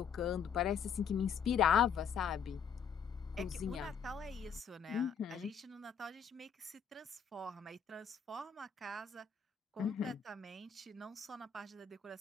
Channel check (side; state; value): right; quieter; 7.1 dB